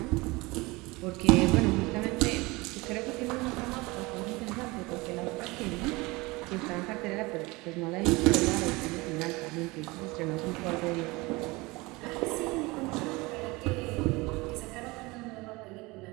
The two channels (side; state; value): left; quieter; 23.3 dB